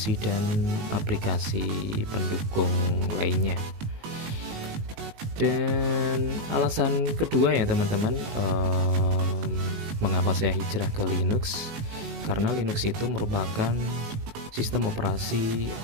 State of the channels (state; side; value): late; left; 19 ms